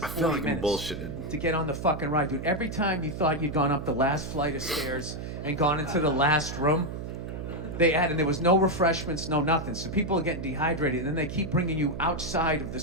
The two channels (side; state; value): right; noise; hum, 7 dB below the sound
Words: I feel like minutes I'm bullshitted to get on the fucking ride, dude. Every time you thought you'd gone up the last flight of stairs and gone into the last room, and there was no refreshments, no nothing. So people are getting dehydrated, and then they keep bringing you outside of the